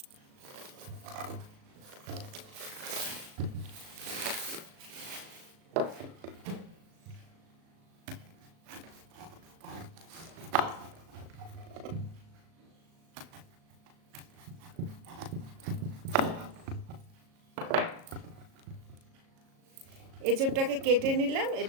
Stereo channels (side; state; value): left; late; 37 ms